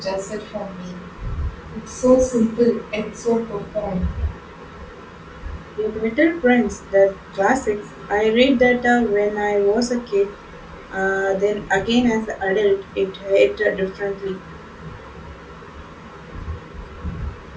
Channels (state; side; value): identical; both; correlation 1.00